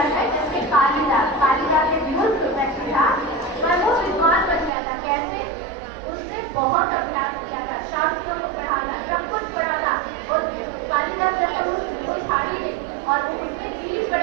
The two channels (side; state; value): left; drops out; at 4.7 s